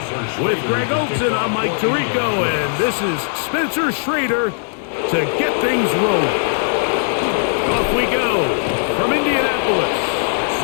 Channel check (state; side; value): silent; right; 56 dB below the other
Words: With Greg Olson, I'm Mike Tirico, and this is Spencer Schrader to get things rolling. Off we go from Indianapolis.